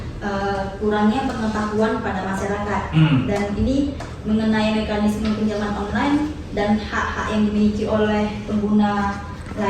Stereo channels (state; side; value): identical; both; correlation 1.00